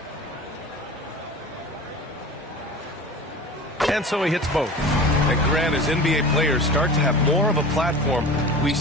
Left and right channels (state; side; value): normal; both; correlation 0.35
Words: And so he hits both. And Grant, as NBA players start to have more of a platform, we